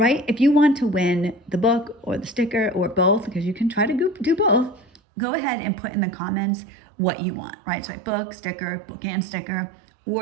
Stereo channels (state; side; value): drops out; left; at 5.0 s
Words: If you want to win the book or the sticker or both, because you can try to do both, go ahead and put in the comments what you want, right? So book and sticker,